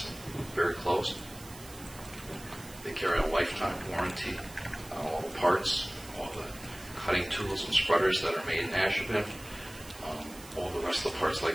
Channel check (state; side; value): noise; right; hiss, 17 dB below the sound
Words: very close. They carry a lifetime warranty on all the parts, all the cutting tools and spreaders that are made in Ashland. All the rest of the parts,